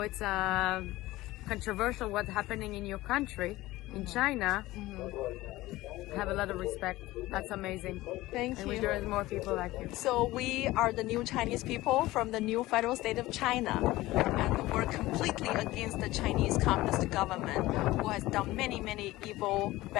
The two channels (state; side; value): quieter; right; 18.0 dB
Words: it's controversial what's happening in your country, in China. I have a lot of respect. That's amazing. Thank And you. we there is more people like you. So we are the new Chinese people from the new federal state of China, and we're completely against the Chinese communist government, who has done many evil,